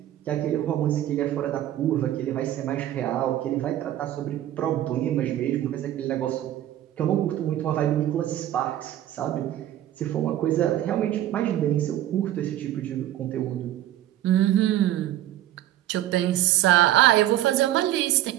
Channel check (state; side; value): quieter; left; 13.0 dB